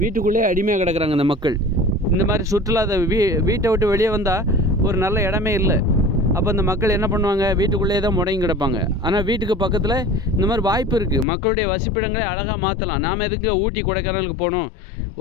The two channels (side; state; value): right; drops out; at 11.2 s